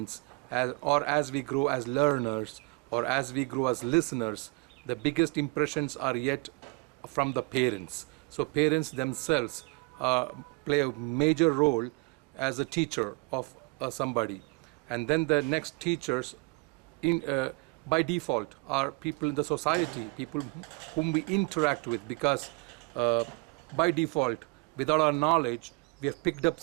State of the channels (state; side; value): quieter; left; 28.8 dB